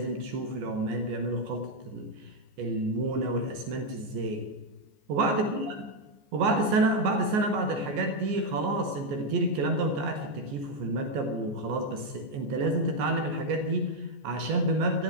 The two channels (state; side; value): late; left; 14 ms